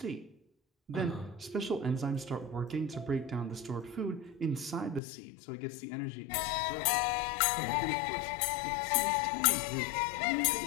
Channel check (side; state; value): right; drops out; at 5.0 s